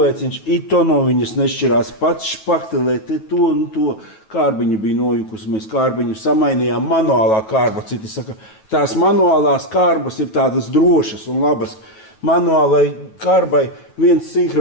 ito no viņas nešķirās, pats špaktelē te to un to. Kārbiņa bija nojukusi, mēs kārbiņu samainījām, manuālā kārba. Citi saka, tās manuālās kārbas ir tādas drošas un labas. Manuālai kārbai viens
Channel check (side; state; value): right; late; 9.2 ms